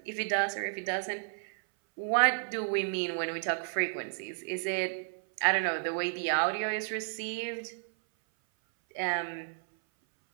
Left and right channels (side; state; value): left; silent; 56 dB below the other